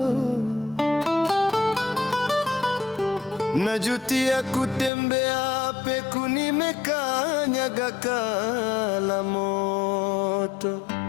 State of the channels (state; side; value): drops out; right; at 4.9 s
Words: Najutia kutembea peku, nimekanyaga kala moto.